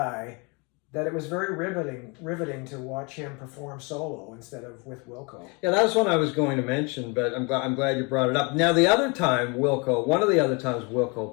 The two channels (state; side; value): quieter; right; 30.7 dB